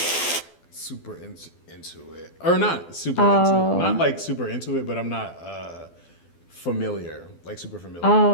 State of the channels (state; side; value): late; right; 12 ms